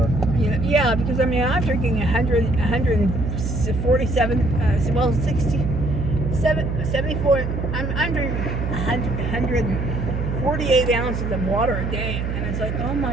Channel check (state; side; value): noise; right; hum, 2 dB below the sound